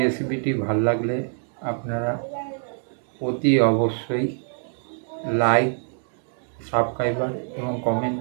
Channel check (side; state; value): left; silent; digital silence